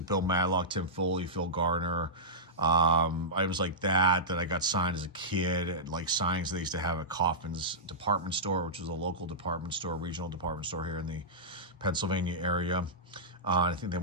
Bill Madlock, Tim Foley, Phil Garner. Items like that I got signed as a kid, at like signings they used to have at Kaufman's department store, which was a local department store, regional department store here in the Pennsylvania area. I think they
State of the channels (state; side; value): normal; both; correlation -0.14